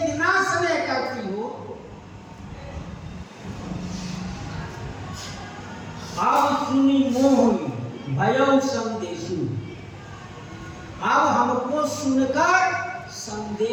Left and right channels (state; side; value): identical; both; correlation 1.00